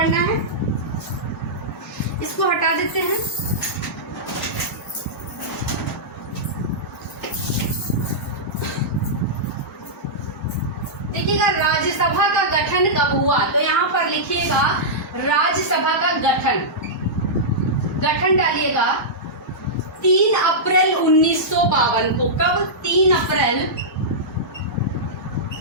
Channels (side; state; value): both; normal; correlation -0.13